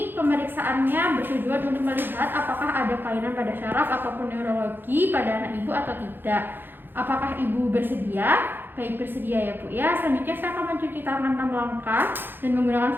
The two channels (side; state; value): left; late; 0.098 ms